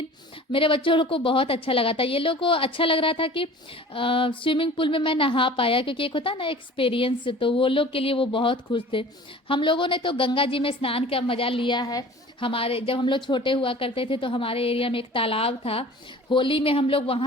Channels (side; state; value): both; normal; correlation 0.43